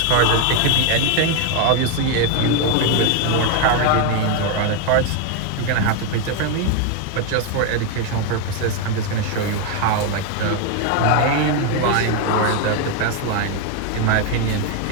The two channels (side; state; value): both; different; correlation 0.01